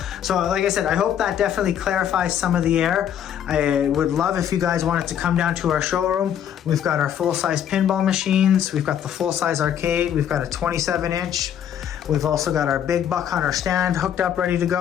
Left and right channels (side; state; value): right; quieter; 9.5 dB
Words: So like I said, I hope that definitely clarifies some of the error. I would love if you guys wanted to come down to our showroom. We've got our full-size pinball machines. We've got the full-size arcade. We've got a 27-inch. We've also got our big Buck Hunter stand hooked up, ready to